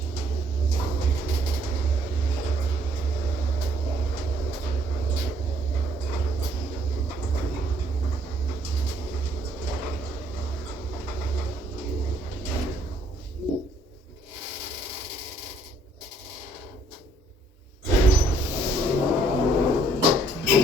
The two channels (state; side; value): normal; both; correlation 0.65